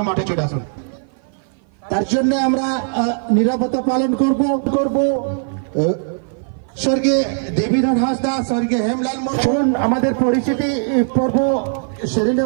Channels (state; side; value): silent; left; 56 dB below the other